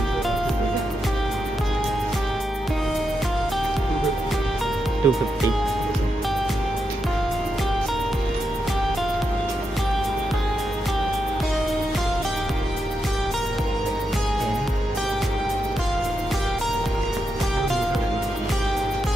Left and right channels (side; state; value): both; normal; correlation 0.85